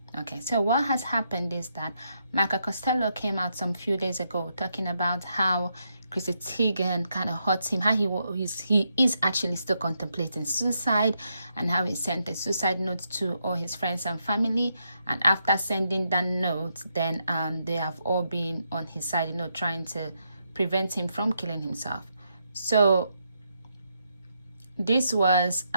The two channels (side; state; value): both; inverted; correlation -0.80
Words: Okay, so what has happened is that Michael Costello came out some few days ago talking about how Chrissy Teigen kind of hurt him, how he is actually still contemplating suicide, and how he sent a suicide note to all his friends and family. And after sending that note, then they have all been on his side, trying to prevent him from killing himself. So this was